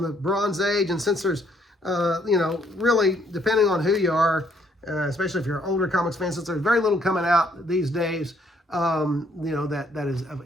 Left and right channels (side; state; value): both; normal; correlation 0.68